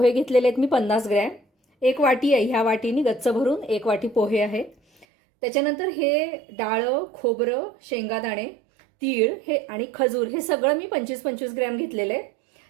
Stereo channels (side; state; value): left; drops out; at 5.1 s